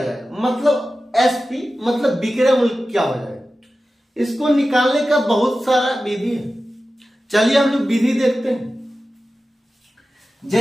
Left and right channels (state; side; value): normal; both; correlation 0.94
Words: मतलब SP मतलब विक्रय मूल्य क्या हो जाएगा। इसको निकालने का बहुत सारा विधि है। चलिए हम लोग विधि देखते हैं।